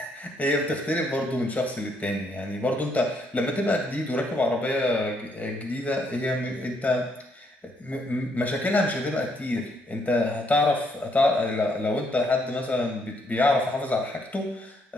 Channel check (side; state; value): both; normal; correlation 0.72